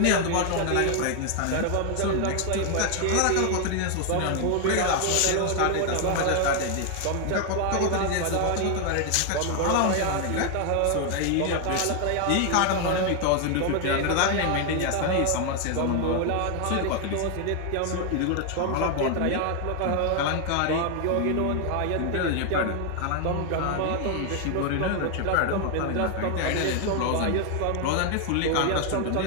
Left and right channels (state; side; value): different; both; correlation 0.00